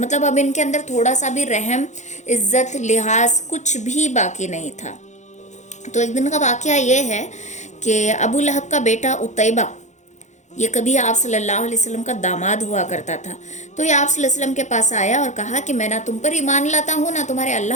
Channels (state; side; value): late; right; 0.34 ms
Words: اب ان کے اندر تھوڑا سا بھی رحم، عزت، لحاظ کچھ بھی باقی نہیں تھا۔ تو ایک دن کا واقعہ یہ ہے کہ ابو لہب کا بیٹا عتیبہ، یہ کبھی آپ صلی اللہ علیہ وسلم کا داماد ہوا کرتا تھا، تو یہ آپ صلی اللہ علیہ وسلم کے پاس آیا اور کہا کہ میں نہ تم پر ایمان لاتا ہوں نہ تمہارے